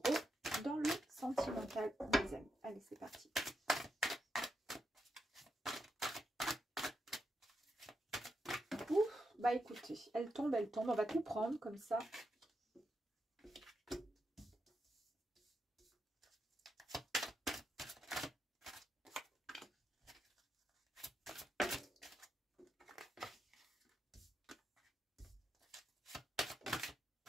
dans le sentimental, mes amis. Allez, c'est parti. Ouf, bah écoutez, elle tombe, elle tombe. On va tout prendre comme ça.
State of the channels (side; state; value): both; normal; correlation 0.84